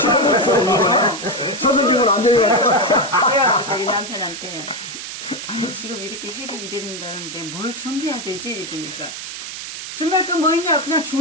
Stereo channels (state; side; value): noise; right; hiss, 9 dB below the sound